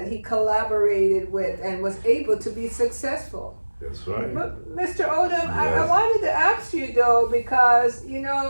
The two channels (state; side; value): inverted; both; correlation -1.00